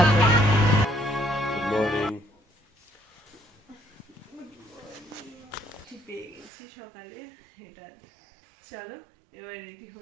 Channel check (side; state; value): left; drops out; at 6.5 s